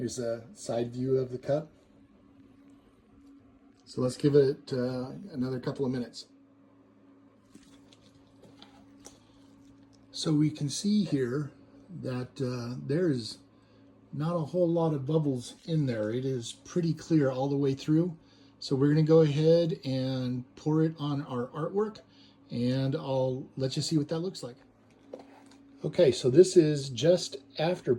a side view of the cup. So let's give it another couple of minutes. So we can see here that there's not a whole lot of bubbles in there. It is pretty clear all the way through. So we're going to go ahead and pour it on our artwork, and I'll let you see what that looks like. Okay, so this is just after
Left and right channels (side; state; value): both; identical; correlation 1.00